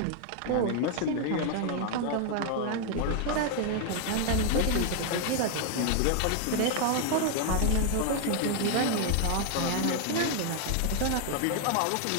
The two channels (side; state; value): both; different; correlation 0.00